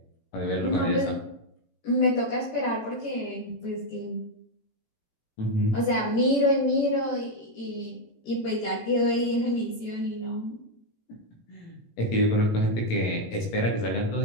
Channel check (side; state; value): right; late; 18 ms